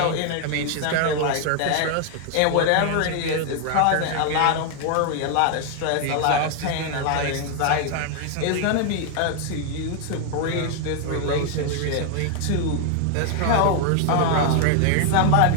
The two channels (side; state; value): both; different; correlation 0.00